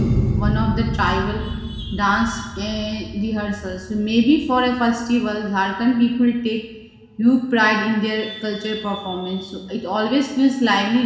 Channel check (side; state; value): both; identical; correlation 1.00